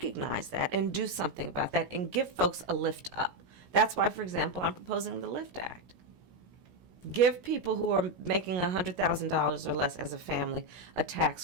that and do something about that and give folks a lift up. That's why, for example, I'm proposing the LIFT Act. Give people who are making $100,000 or less as a family a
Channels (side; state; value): left; late; 16 ms